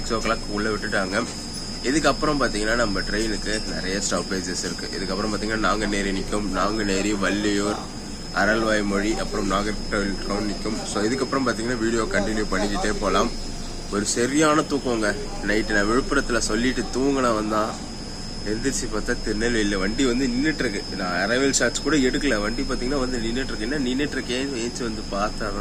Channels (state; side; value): identical; both; correlation 1.00